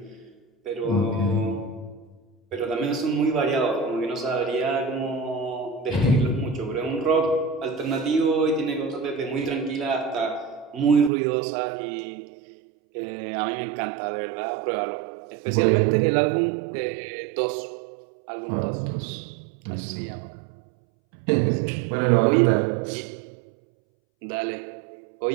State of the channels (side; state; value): left; drops out; at 11.1 s